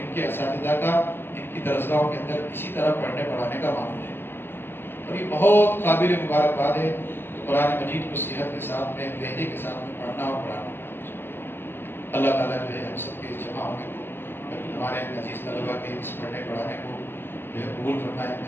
کے اساتذہ کا ان کی درسگاہوں کے اندر اسی طرح پڑھنے پڑھانے کا معمول ہے، اور یہ بہت قابل مبارکباد ہے کہ قرآن مجید کو صحت کے ساتھ میں، لہجے کے ساتھ میں پڑھنا اور پڑھانا۔ اللہ تعالیٰ جو ہے ہم سب کے جمع ہونے کو، ہمارے عزیز طلباء کے اس پڑھنے پڑھانے کو جو ہے قبول فرمائے،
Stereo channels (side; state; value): right; late; 0.10 ms